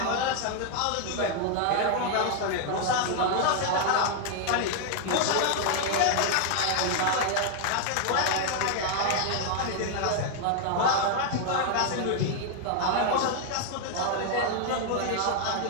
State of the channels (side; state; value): both; different; correlation 0.00